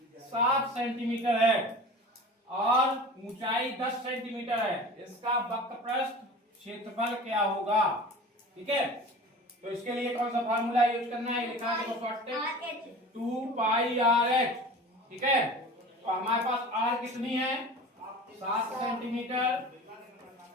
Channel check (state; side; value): normal; both; correlation 0.38